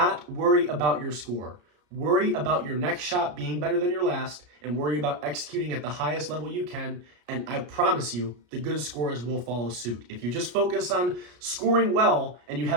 worry about your score. Worry about your next shot being better than your last, and worry about executing at the highest level you can, and I promise you, the good scores will follow suit. If you just focus on scoring well, and you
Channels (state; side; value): late; left; 34 ms